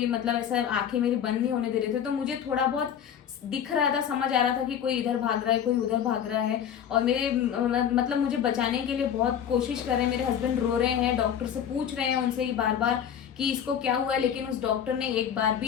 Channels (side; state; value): right; quieter; 8.9 dB